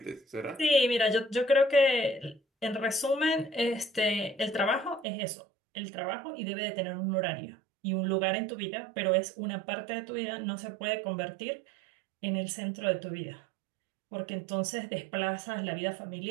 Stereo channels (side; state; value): left; drops out; at 5.1 s